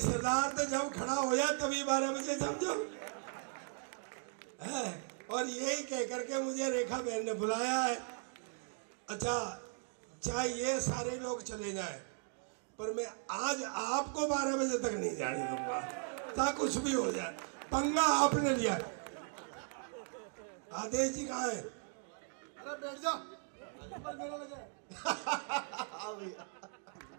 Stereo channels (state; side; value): silent; left; 53 dB below the other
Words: तो जब खड़ा हो जाए तभी 12 बजे समझो है। और यही कह करके मुझे रेखा बहन ने बुलाया है। अच्छा, चाहे ये सारे लोग चले जाए पर मैं आज आपको 12 बजे तक नहीं जाने दूंगा, चाहे कुछ भी हो जाए। पंगा आपने लिया। आदेश जी कहाँ है? अरे बैठ जा, मेरा लगे